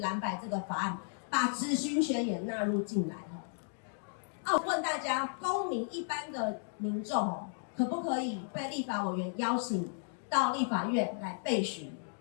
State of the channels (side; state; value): right; silent; digital silence